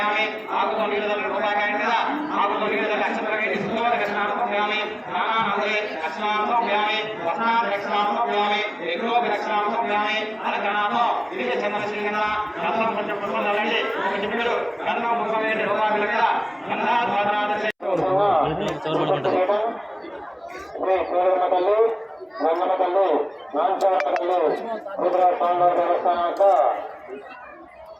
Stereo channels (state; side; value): identical; both; correlation 1.00